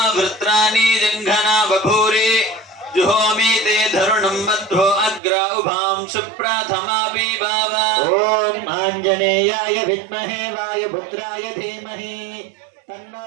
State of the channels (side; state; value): left; drops out; at 5.2 s